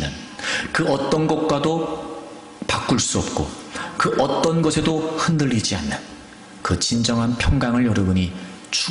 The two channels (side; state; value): both; identical; correlation 1.00